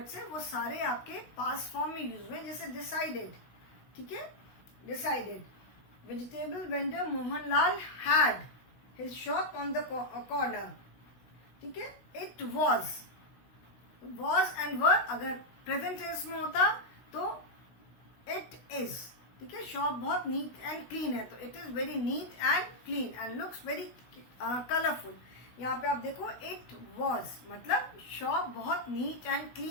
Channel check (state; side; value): late; right; 16 ms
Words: हैं वो सारे आपके पास्ट फॉर्म में यूज हुए हैं, जैसे डिसाइडेड, ठीक है, decided. Vegetable vendor Mohanlal had his shop on the corner, ठीक है। इट वॉज एंड वर अगर प्रेजेंट टेंस में होता तो इट इज, ठीक है। शॉप बहुत नीट एंड क्लीन है, तो it is very neat and clean and looks very colourful. यहाँ पे आप देखो इट वॉज, मतलब शॉप बहुत नीट एंड